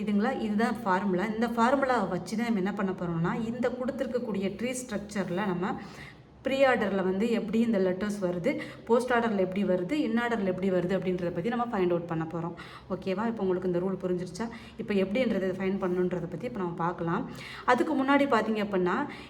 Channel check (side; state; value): both; identical; correlation 1.00